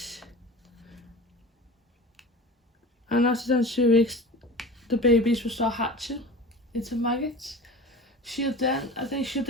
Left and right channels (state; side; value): normal; both; correlation 0.36